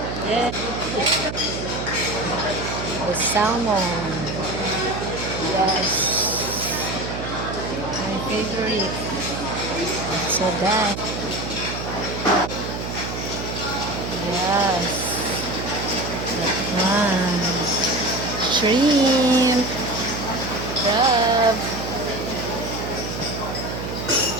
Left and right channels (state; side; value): noise; right; hum, 6 dB below the sound